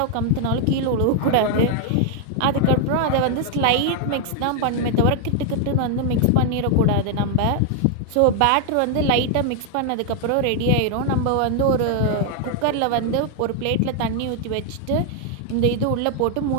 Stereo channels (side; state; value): both; different; correlation 0.00